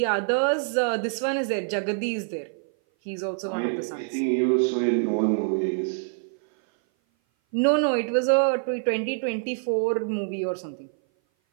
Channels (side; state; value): left; silent; 57 dB below the other